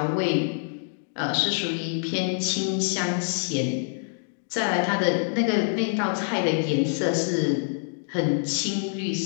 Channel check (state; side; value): silent; right; digital silence